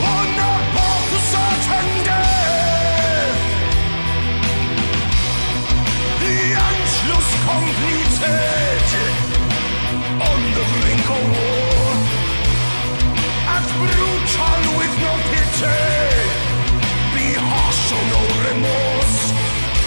a path to certain death. The Anschluss completed. On the brink of war, act brutal with no pity, be harsh, show no remorse.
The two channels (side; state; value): both; inverted; correlation -1.00